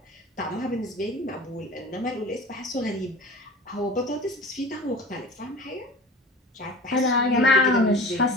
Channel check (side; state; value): both; normal; correlation 0.38